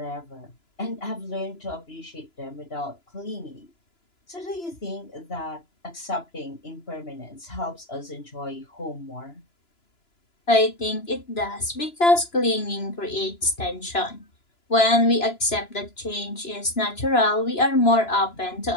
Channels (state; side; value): late; right; 2.9 ms